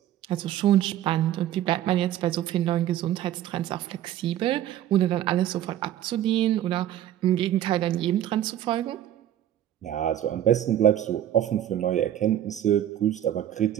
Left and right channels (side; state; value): left; quieter; 11.9 dB